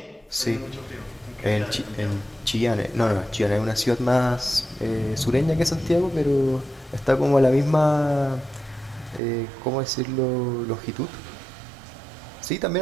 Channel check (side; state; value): left; drops out; at 9.2 s